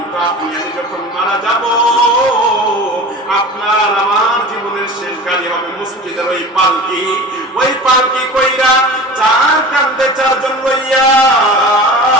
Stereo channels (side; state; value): both; normal; correlation 0.36